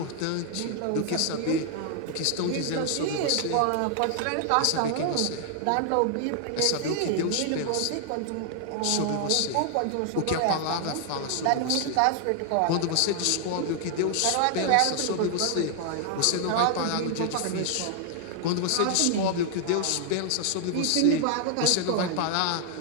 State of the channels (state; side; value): different; both; correlation 0.00